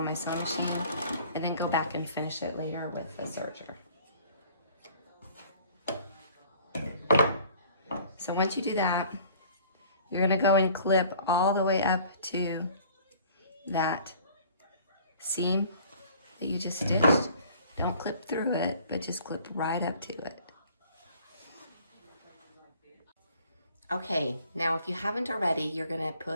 my sewing machine and then go back and finish it later with the serger. So once you do that, you're gonna go and clip all the way up to that seam that you just stitched. Don't clip through it, but just clip right up to it. Okay, now if you haven't already, you're gonna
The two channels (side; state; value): both; inverted; correlation -0.52